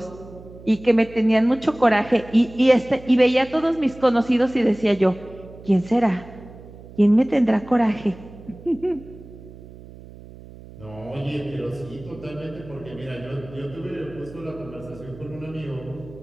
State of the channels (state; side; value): noise; right; hum, 18 dB below the sound